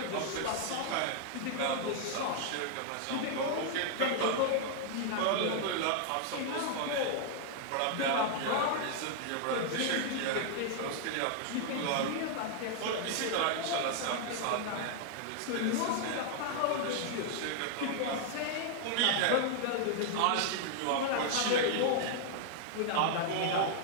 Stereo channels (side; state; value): both; different; correlation 0.00